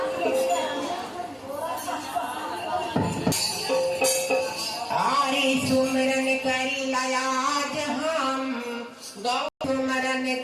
आरी सुमरन करी लयाज हम, गौ सुमरन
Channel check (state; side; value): identical; both; correlation 1.00